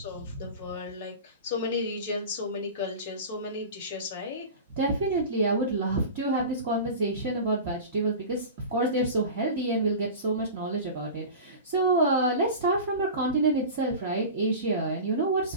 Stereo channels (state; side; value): inverted; both; correlation -0.31